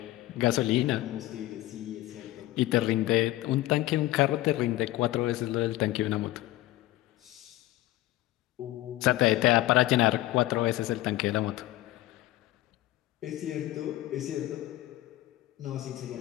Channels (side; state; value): right; quieter; 16.5 dB